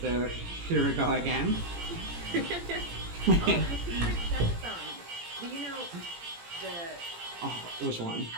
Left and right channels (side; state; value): left; late; 17 ms